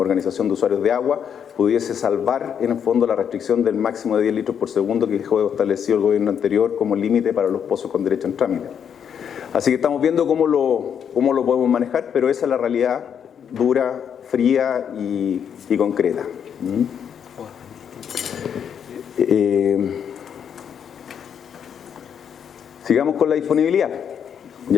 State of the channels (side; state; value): right; quieter; 8.0 dB